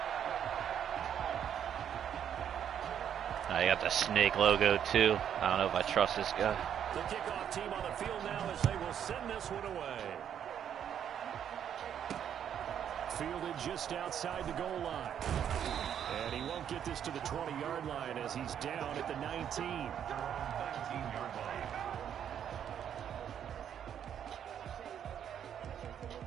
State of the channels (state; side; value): quieter; left; 9.1 dB